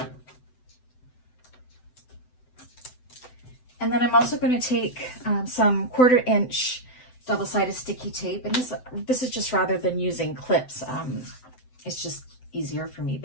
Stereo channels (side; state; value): right; late; 7.9 ms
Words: And then I'm also going to take some 1/4 inch double-sided sticky tape, and this is just rather than using clips. It's just easier for me,